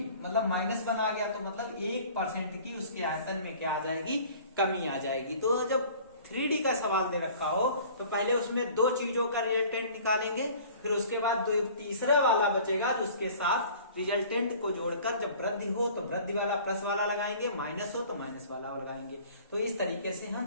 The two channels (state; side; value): inverted; both; correlation -0.48